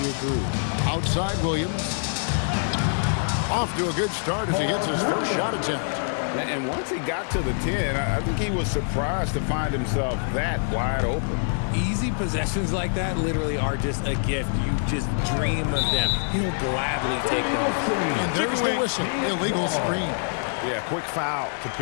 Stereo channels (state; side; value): silent; right; 61 dB below the other